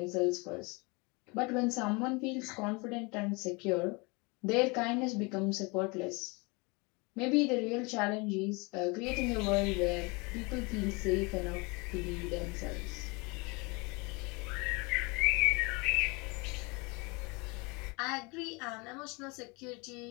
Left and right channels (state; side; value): quieter; right; 28.1 dB